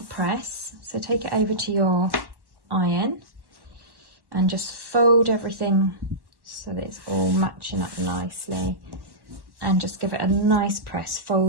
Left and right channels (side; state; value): left; late; 1.1 ms